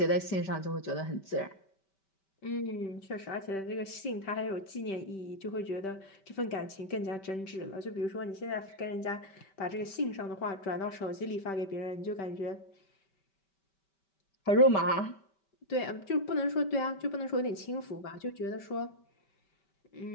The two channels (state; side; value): late; right; 5.2 ms